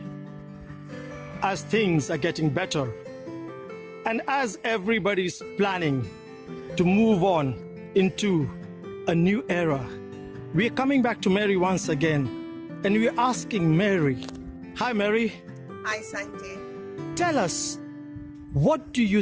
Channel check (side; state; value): both; identical; correlation 1.00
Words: as things are getting better, and as everybody's planning to move on into a new era, we are coming back to Mary once again, and we are asking Mary. Hi, Mary. Hi, Sanjay. Tell us, what do you